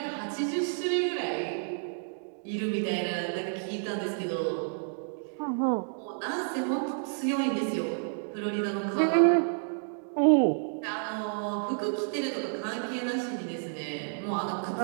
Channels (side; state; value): left; silent; digital silence